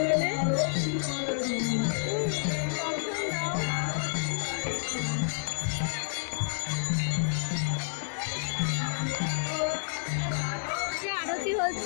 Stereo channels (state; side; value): silent; right; digital silence